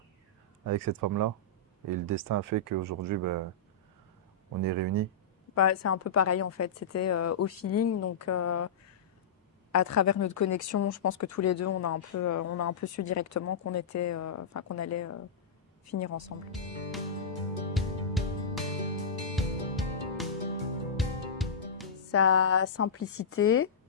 cette femme-là. Et le destin a fait qu'aujourd'hui, ben, on est réunis. Bah, c'est un peu pareil en fait, c'était au feeling, donc à travers notre connexion, je pense que tous les deux, on a un peu su directement qu'on était, enfin qu'on allait finir ensemble. Sa simplicité,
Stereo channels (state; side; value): quieter; right; 4.4 dB